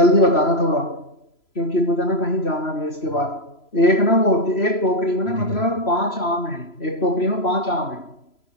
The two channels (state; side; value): late; right; 3.0 ms